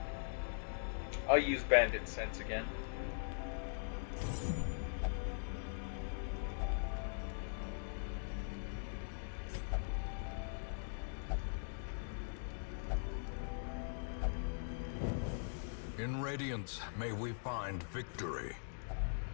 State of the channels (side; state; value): right; silent; digital silence